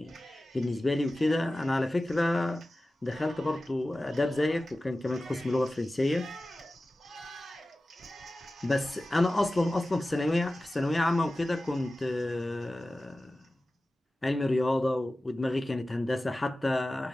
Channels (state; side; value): normal; both; correlation 0.96